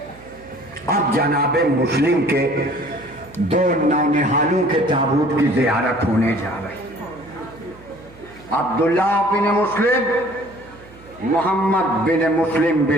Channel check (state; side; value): noise; right; hum, 23 dB below the sound